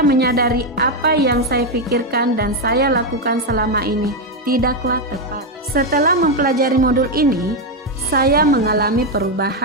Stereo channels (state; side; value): normal; both; correlation 0.05